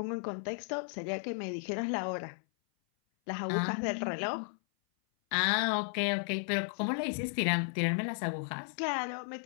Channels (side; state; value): right; silent; 55 dB below the other